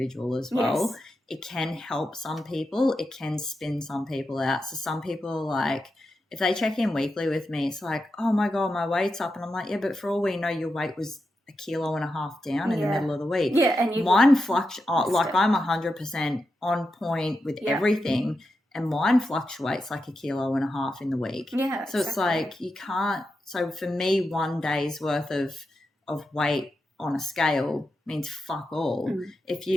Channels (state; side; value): normal; both; correlation 0.88